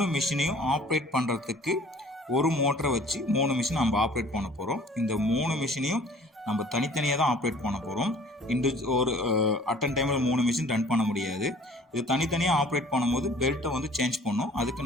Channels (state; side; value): normal; both; correlation 0.51